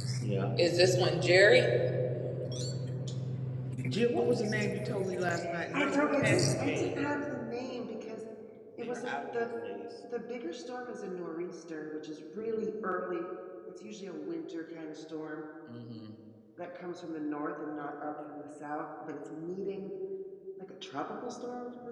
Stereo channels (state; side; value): identical; both; correlation 1.00